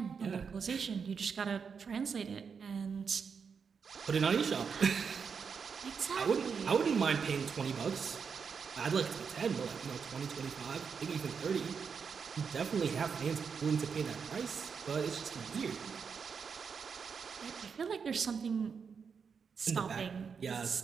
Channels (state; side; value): quieter; left; 6.1 dB